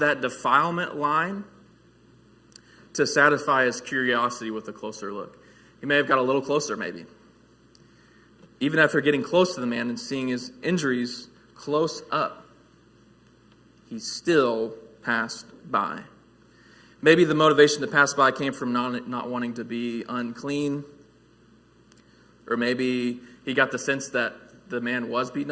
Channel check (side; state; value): both; identical; correlation 1.00